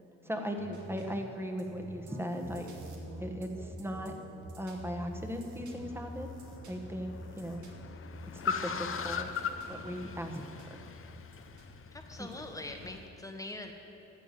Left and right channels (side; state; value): both; normal; correlation 0.56